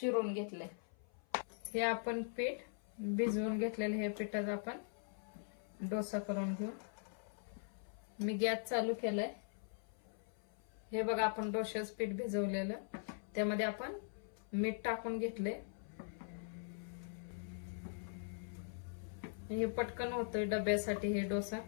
घेतले। हे आपण पीठ भिजवून घेतलेले, हे पिठाचा आपण डोसा करून घेऊ। मी गॅस चालू केलाय। हे बघा, आपण डोशाचं पीठ भिजवलेलं, त्यामध्ये आपण मीठ टाकून घेतले। हे पटकन होतोय डब्यासाठी हे डोसा।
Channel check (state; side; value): silent; right; 50 dB below the other